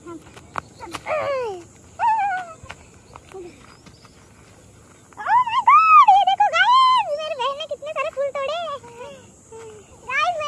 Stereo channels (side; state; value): both; identical; correlation 1.00